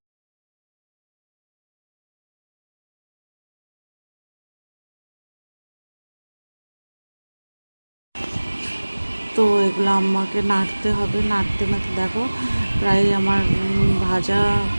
তো এগুলো আমাকে নাড়তে হবে। নাড়তে দেখো প্রায় আমার ভাজা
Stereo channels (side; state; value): both; inverted; correlation -1.00